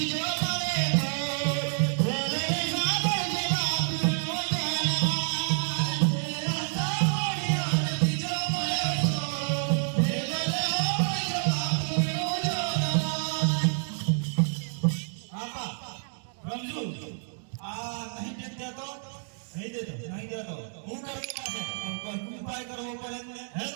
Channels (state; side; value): silent; left; digital silence